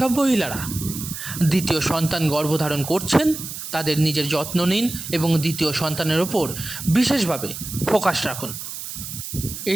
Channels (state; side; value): noise; right; hiss, 8 dB below the sound